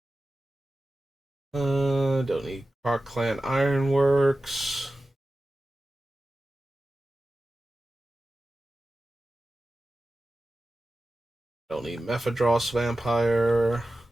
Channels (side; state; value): both; normal; correlation 0.94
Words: Don't need Park Clan Ironworks. Don't need Mephidros Vampire.